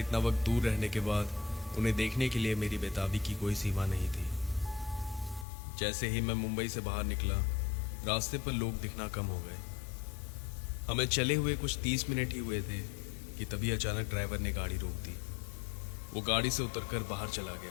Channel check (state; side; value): drops out; right; at 5.5 s